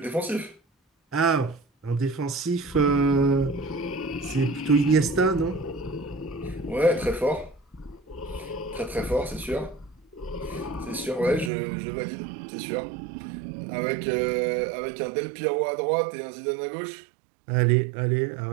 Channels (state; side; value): drops out; left; at 11.5 s